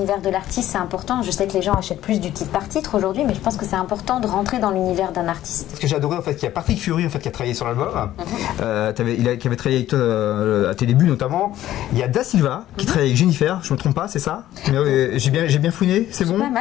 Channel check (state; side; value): quieter; right; 13.4 dB